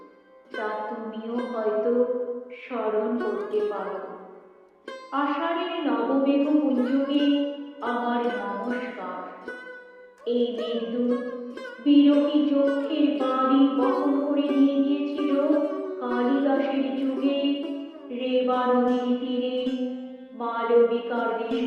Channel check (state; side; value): identical; both; correlation 1.00